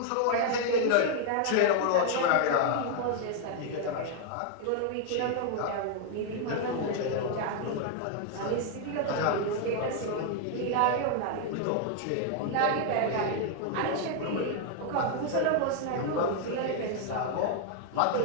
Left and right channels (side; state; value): both; different; correlation 0.00